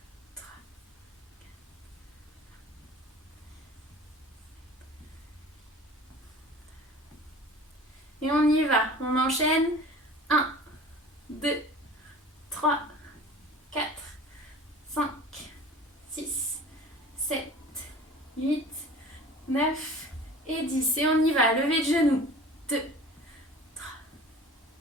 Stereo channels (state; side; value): normal; both; correlation 0.42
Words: Et on y va, on enchaîne. 1, 2, 3, 4, 5, 6, 7, 8, 9 et 10. Et on y va, levée de genoux. 2, 3,